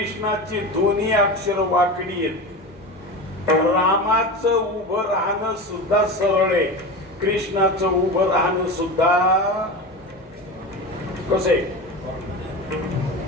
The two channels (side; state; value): both; normal; correlation 0.26